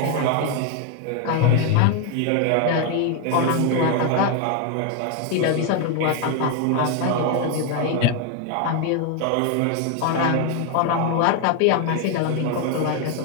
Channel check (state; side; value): different; both; correlation 0.01